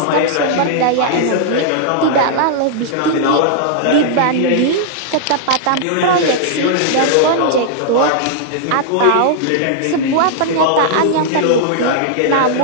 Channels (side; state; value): both; different; correlation -0.01